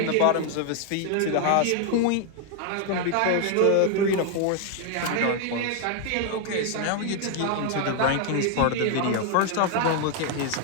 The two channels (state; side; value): different; both; correlation 0.01